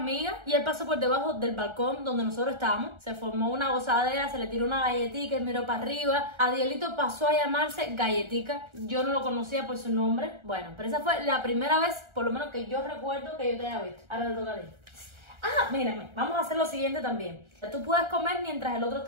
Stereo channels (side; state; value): left; late; 1.3 ms